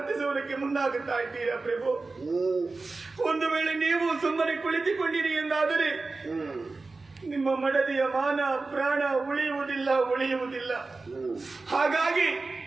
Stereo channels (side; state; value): left; quieter; 3.7 dB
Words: ಮುಂದಾಗುತ್ತಾ ಇದ್ದೀರಾ ಪ್ರಭು? ಒಂದು ವೇಳೆ ನೀವು ಸುಮ್ಮನೆ ಕುಳಿತುಕೊಂಡಿರಿ ಎಂದಾದರೆ ನಿಮ್ಮ ಮಡದಿಯ ಮಾನ ಪ್ರಾಣ ಉಳಿಯುವುದಿಲ್ಲ. ಹಾಗಾಗಿ